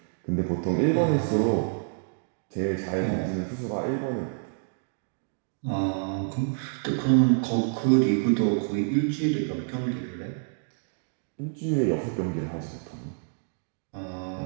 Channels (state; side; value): silent; left; digital silence